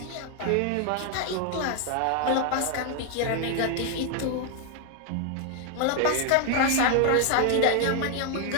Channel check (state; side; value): different; both; correlation 0.00